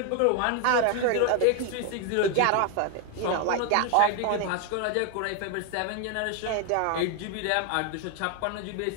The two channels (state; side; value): different; both; correlation 0.01